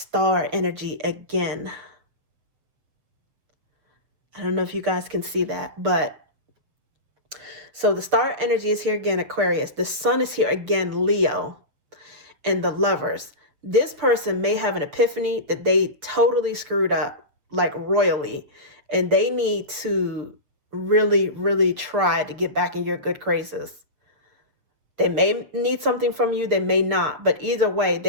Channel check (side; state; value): left; late; 6.8 ms